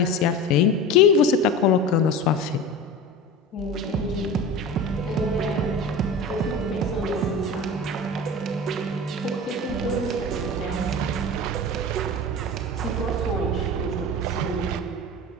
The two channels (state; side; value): normal; both; correlation 0.31